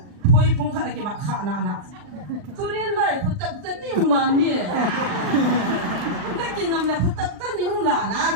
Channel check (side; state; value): left; late; 39 ms